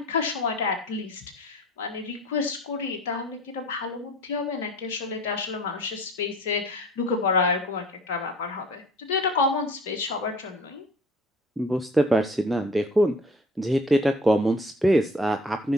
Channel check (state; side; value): normal; both; correlation 0.48